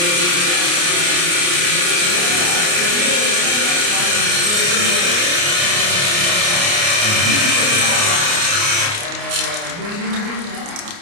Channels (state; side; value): late; left; 29 ms